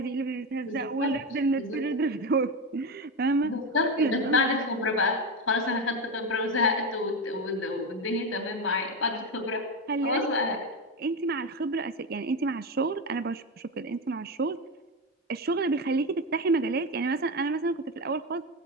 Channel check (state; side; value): normal; both; correlation 0.15